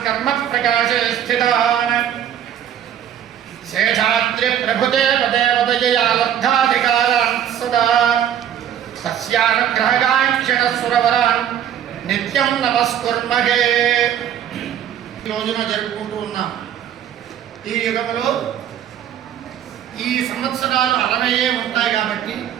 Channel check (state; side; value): quieter; left; 9.9 dB